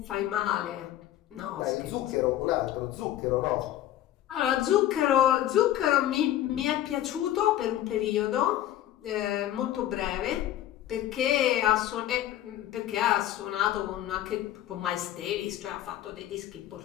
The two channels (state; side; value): quieter; right; 12.8 dB